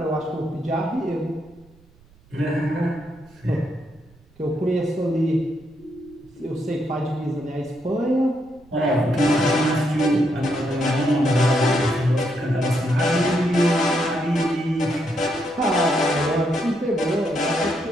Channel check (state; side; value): noise; right; rumble, 29 dB below the sound